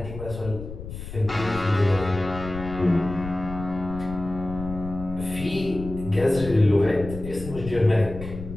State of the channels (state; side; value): noise; left; rumble, 10 dB below the sound